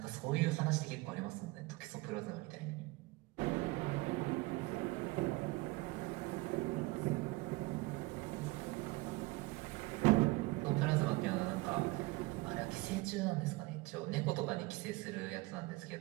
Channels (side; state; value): left; quieter; 22.5 dB